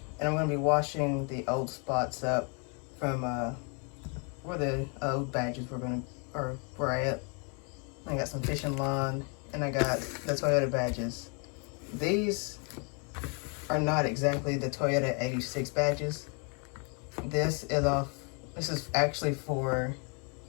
And I'm going to be washing the old spots up from where the old badges were at. I got some fishing line, and I got the Toyota badges. These are not exactly the Toyota 86 badges. This is actually for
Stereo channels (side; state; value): right; quieter; 37.0 dB